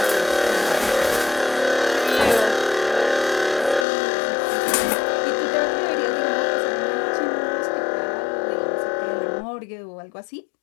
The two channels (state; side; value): drops out; right; at 3.9 s